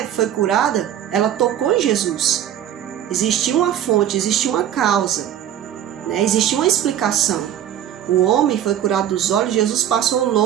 foi curada, ela tocou em Jesus. Existia uma fonte, existia uma causa, né? Existia uma explicação. O homem foi curado dos olhos, Jesus passou o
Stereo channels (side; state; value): left; quieter; 10.6 dB